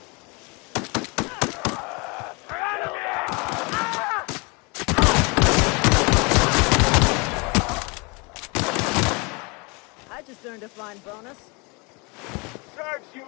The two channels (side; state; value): right; quieter; 29.4 dB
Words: I just earned a fine bonus. Serves you